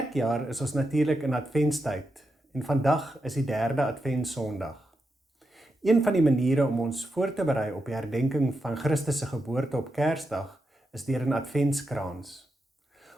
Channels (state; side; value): normal; both; correlation 0.86